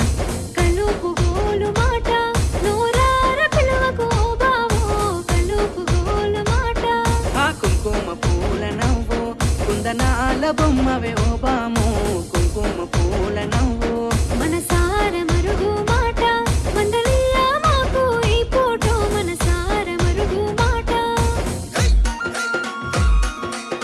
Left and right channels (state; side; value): identical; both; correlation 1.00